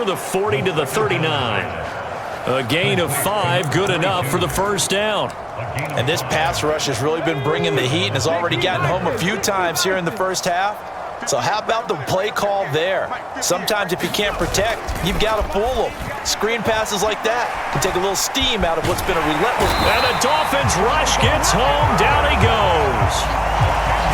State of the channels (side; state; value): both; identical; correlation 1.00